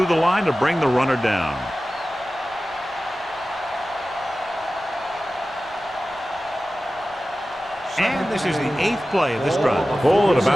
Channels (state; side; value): noise; left; rumble, 27 dB below the sound